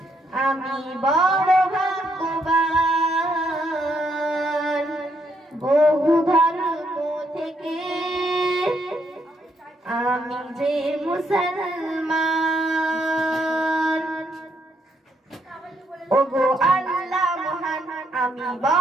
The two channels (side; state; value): both; normal; correlation 0.74